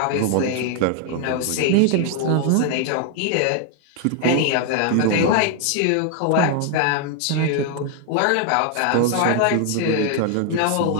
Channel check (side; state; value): both; different; correlation 0.01